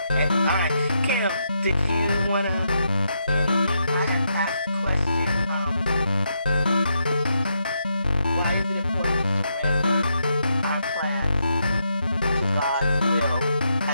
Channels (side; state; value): both; inverted; correlation -0.80